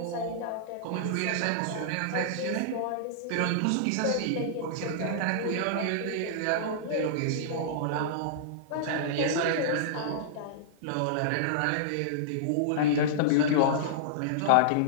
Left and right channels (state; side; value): different; both; correlation -0.02